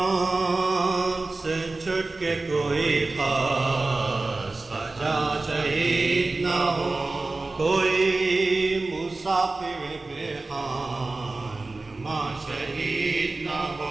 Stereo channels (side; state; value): left; quieter; 3.3 dB